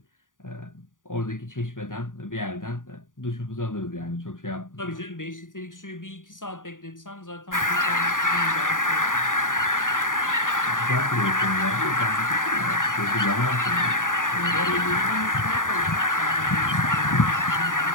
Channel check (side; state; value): right; late; 0.88 ms